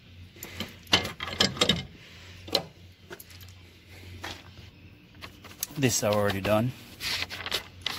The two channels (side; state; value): both; identical; correlation 1.00